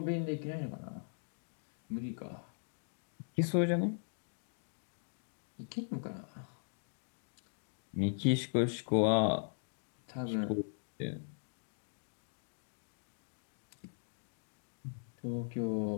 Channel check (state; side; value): silent; right; digital silence